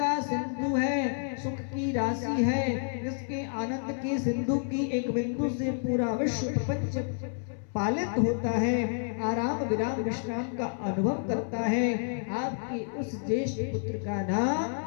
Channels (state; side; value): silent; right; 58 dB below the other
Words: सिंधु है, सुख की राशि है, जिसके आनंद के सिंधु की एक बिंदु से पूरा विश्व प्रपंच पालित होता है, आराम विराम विश्राम का अनुभव करता है। आपके उस ज्येष्ठ पुत्र का नाम